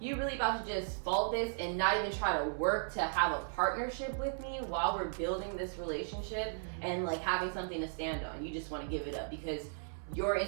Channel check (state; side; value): silent; left; 54 dB below the other